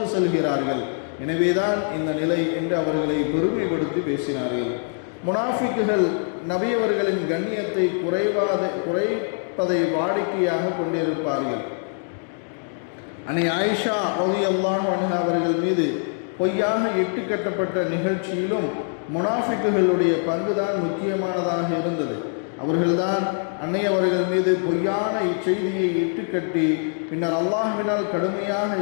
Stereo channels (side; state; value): right; silent; 56 dB below the other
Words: செல்கிறார்கள், எனவேதான் இந்த நிலை என்று அவர்களை பெருமைப்படுத்தி பேசினார்கள். முனாஃபிக்குகள் நபி அவர்களின் கண்ணியத்தை குறைப்பதை வாடிக்கையாக கொண்டிருப்பார்கள். அன்னை ஆயிஷா ரலியல்லாஹு அன்ஹா அவர்கள் மீது பொய்யாக இட்டுக்கட்டப்பட்ட நிகழ்ச்சியிலும் முனாஃபிக்குகளுடைய பங்குதான் முக்கியமானதாக இருந்தது. அவர்கள்தான் அன்னை அவர்கள் மீது பொய்யான இச்செய்தியை இட்டுக்கட்டி பின்னர் அல்லாஹ்வினால் கடுமையாக